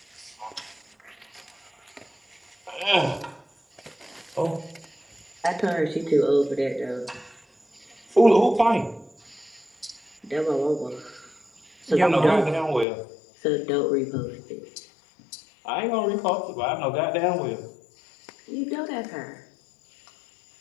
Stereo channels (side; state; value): right; drops out; at 12.9 s